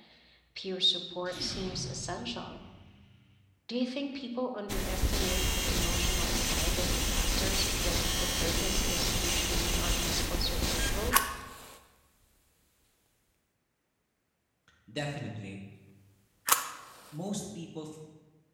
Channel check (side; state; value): both; identical; correlation 1.00